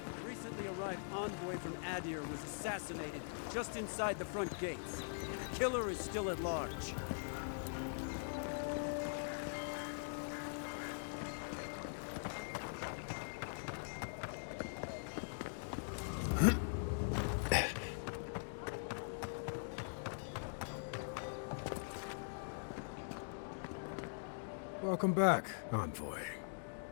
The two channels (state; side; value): silent; right; digital silence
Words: recently arrived envoy from Adir was assassinated just inside the front gates. The killer is still at large. Welcome back, Envoy.